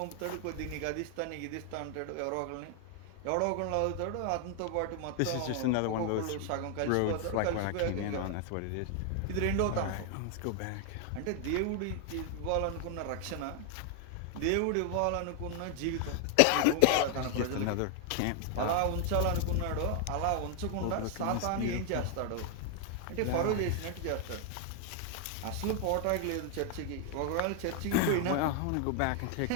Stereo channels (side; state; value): both; different; correlation 0.00